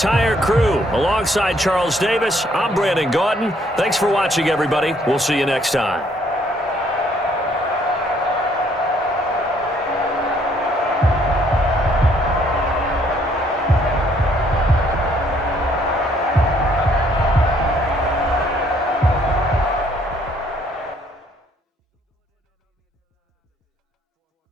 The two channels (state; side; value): normal; both; correlation 0.65